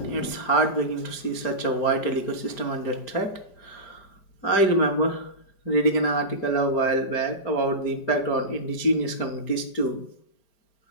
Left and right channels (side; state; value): right; late; 5.0 ms